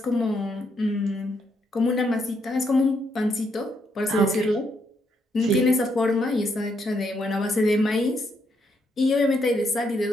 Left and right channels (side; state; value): both; normal; correlation 0.76